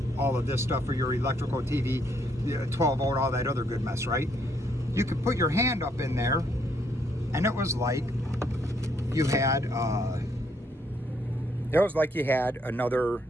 all of this stuff for your electrical TV, 12 volt, all that other good mess, right? You could put your hand up in there and it was like you had another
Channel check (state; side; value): normal; both; correlation 0.71